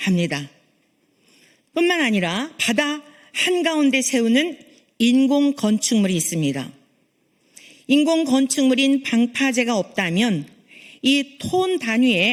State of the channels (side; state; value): both; identical; correlation 1.00